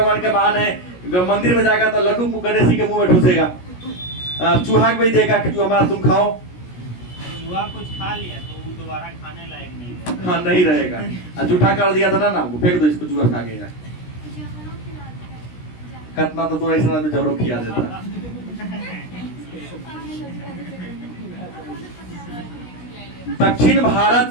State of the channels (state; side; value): late; right; 17 ms